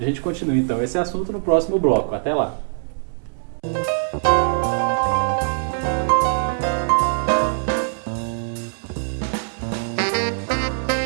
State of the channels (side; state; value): left; silent; 64 dB below the other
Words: gente continua então esse assunto no próximo bloco. Até lá!